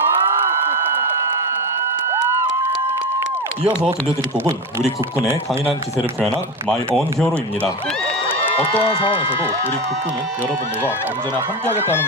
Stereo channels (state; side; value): normal; both; correlation 0.20